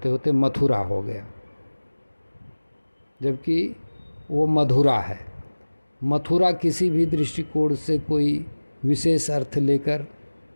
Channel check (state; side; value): inverted; both; correlation -1.00